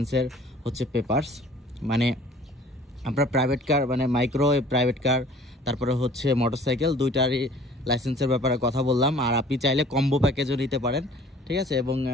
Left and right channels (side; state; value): both; normal; correlation 0.50